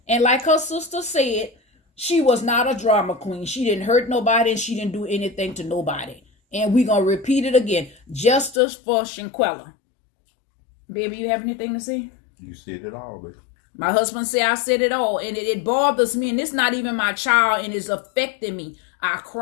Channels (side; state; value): right; drops out; at 8.6 s